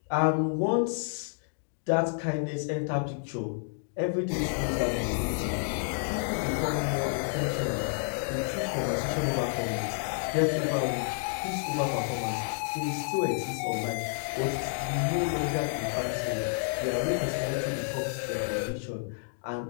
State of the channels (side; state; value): right; silent; digital silence